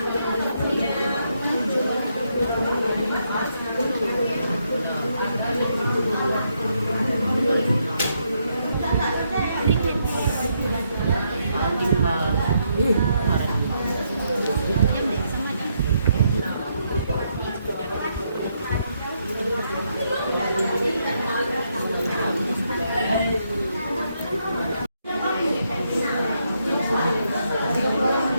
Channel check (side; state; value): both; inverted; correlation -0.77